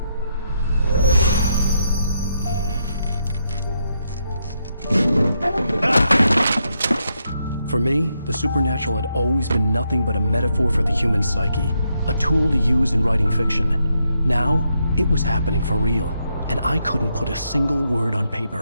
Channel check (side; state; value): both; inverted; correlation -0.79